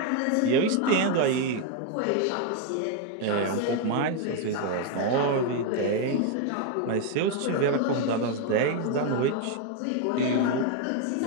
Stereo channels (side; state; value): both; different; correlation 0.01